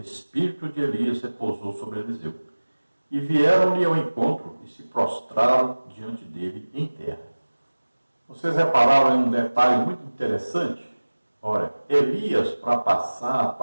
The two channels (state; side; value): inverted; both; correlation -1.00